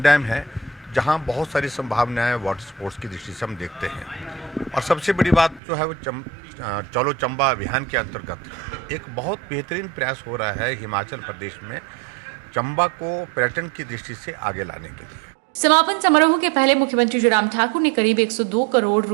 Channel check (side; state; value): left; drops out; at 5.6 s